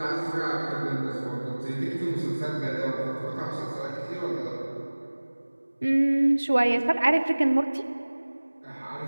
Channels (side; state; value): both; inverted; correlation -1.00